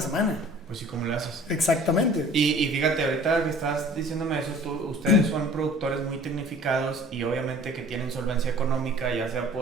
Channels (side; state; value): both; normal; correlation 0.49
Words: semana. Pues sí, ¿cómo le haces? Exactamente. Y fíjate, ahorita que estás diciéndome eso, ustedes son productores muy tecnificados y obviamente que tienen solvencia económica, ya sea